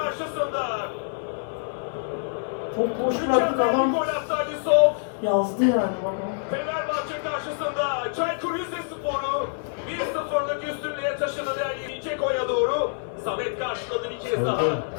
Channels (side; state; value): right; silent; digital silence